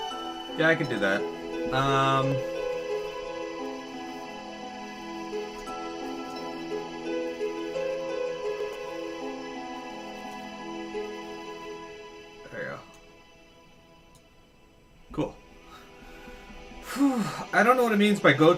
Yeah, I can do that. There you go. Cool. Whew. I don't know what it means by go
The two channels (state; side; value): identical; both; correlation 1.00